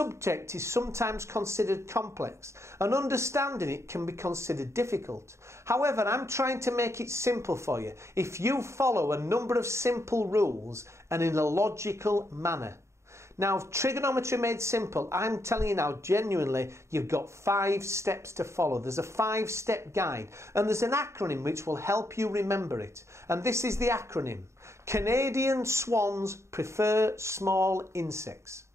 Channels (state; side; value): late; left; 0.14 ms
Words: is sometimes considered complex and understanding it can be considered difficult. However, I'm trying to make it simple for you if you follow a number of simple rules and in a logical manner. Now, Trigonometry Made Simple, I'm telling you now genuinely, you've got 5 steps to follow. There's a 5-step guide and there's an acronym which will help you remember it. And this is the acronym: Canadian swans prefer small insects.